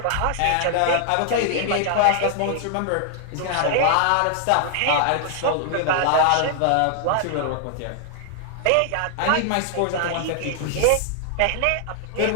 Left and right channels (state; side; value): different; both; correlation 0.00